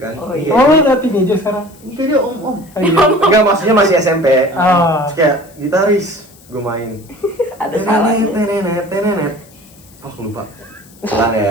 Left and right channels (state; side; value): noise; left; hiss, 26 dB below the sound